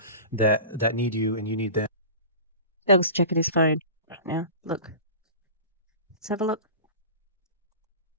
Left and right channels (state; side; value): inverted; both; correlation -0.34